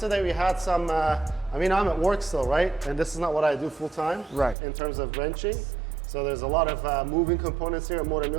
we had some, I mean, I'm at work still, right? And this is not what I do full time, Right. in terms of wrenching. So there's a lot of moving components here at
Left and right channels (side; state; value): left; drops out; at 4.5 s